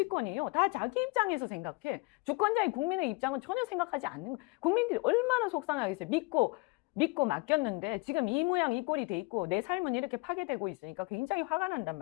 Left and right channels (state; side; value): quieter; right; 27.4 dB